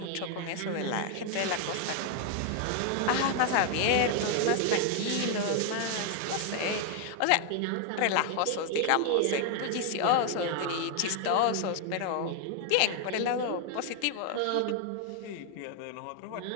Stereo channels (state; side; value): different; both; correlation 0.00